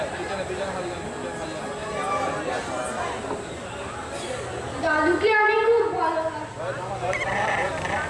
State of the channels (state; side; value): identical; both; correlation 1.00